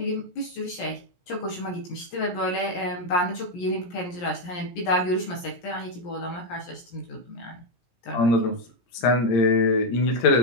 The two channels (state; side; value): late; right; 17 ms